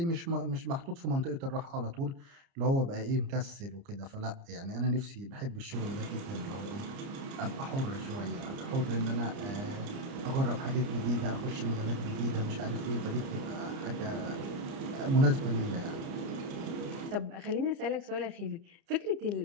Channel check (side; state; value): left; late; 30 ms